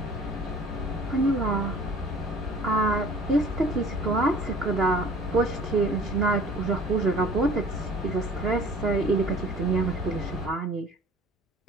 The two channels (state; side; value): normal; both; correlation 0.49